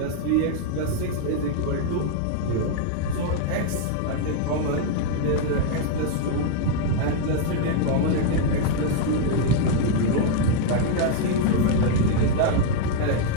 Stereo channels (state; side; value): different; both; correlation 0.00